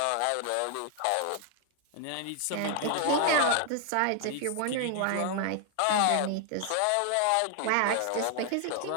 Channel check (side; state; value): both; different; correlation 0.00